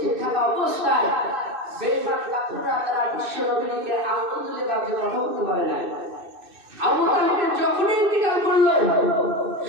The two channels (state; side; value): late; left; 2.6 ms